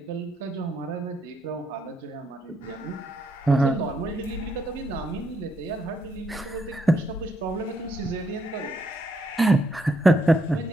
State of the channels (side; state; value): both; normal; correlation 0.75